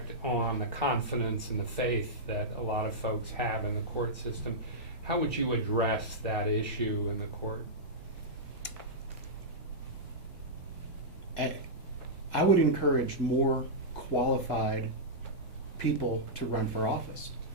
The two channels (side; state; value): both; normal; correlation -0.11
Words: on the confidence and the faith that a lot of folks have in the court system. How would you address that issue in the court? I would encourage more qualified people to run for office,